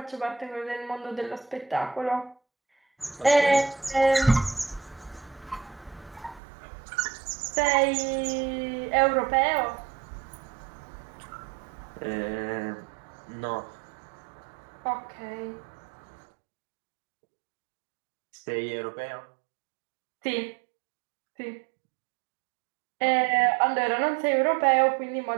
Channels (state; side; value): drops out; left; at 6.4 s